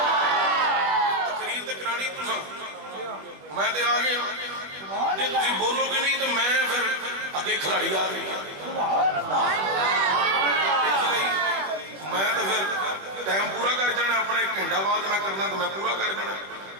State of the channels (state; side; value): late; left; 20 ms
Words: تقریر تے کرانی تساں، میں تے آ گیا، جے تسی بولو گے نہیں تو میں پھر اگے کھلاڑی آ گئی۔ اس لیے میں تو پھر ٹائم پورا کر جانا، اپنا 1 گھنٹہ بعد میں کرنا تو میں پورا کر جانا۔